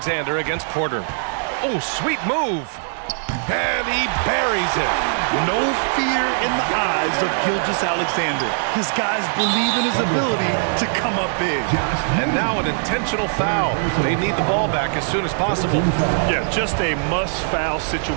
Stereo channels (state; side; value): silent; left; digital silence